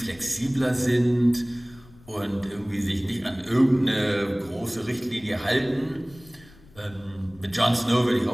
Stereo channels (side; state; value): left; noise; rumble, 24 dB below the sound